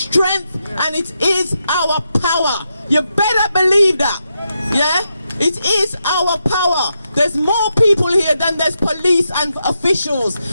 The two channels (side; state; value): both; inverted; correlation -0.84